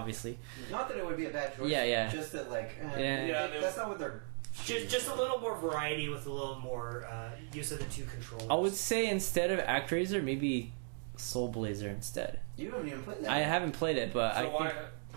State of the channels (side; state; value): left; silent; 53 dB below the other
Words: Not that it would be a bad choice. Yeah. Just that like. Yeah. That's not what they're. Just a little more variety with a little more use of the two controllers. I would say instead of ActRaiser, maybe Soul Blazer instead. You haven't even played that. I haven't played it, but So I why? think.